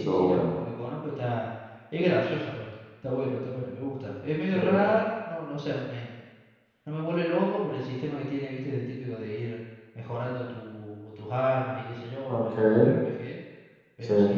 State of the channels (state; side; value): identical; both; correlation 1.00